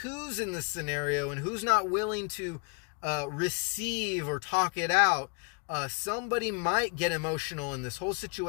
in the scenario and who's not willing to receive or talk it out. Somebody might get emotional in this whole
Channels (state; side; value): quieter; right; 34.8 dB